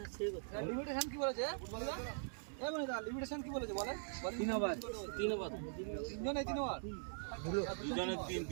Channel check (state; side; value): silent; left; digital silence